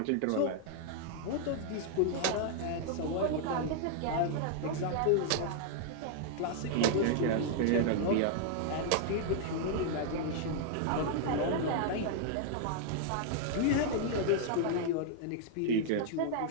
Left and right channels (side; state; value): both; different; correlation -0.01